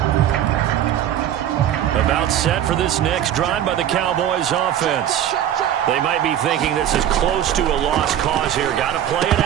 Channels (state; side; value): quieter; left; 10.8 dB